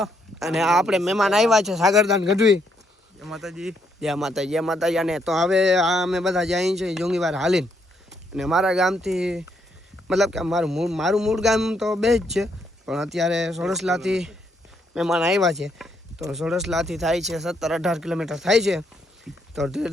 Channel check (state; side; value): normal; both; correlation 0.74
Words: અને આપણે મહેમાન આવ્યા છે સાગરદાન ગઢવી. જય માતાજી જય માતાજી જય માતાજી. અને તો હવે અમે બધા જઈએ છીએ જોંગીવાર હાલીને. અને મારા ગામથી મતલબ કે મારું મૂળ ગામ તો બે જ છે, પણ અત્યારે સોડસલાથી મહેમાન આવ્યા છે. તો સોડસલાથી થાય છે 17-18 કિલોમીટર થાય છે. તો ધીરે